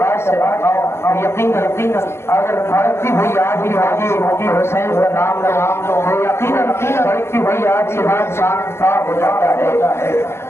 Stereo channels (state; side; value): late; right; 0.12 ms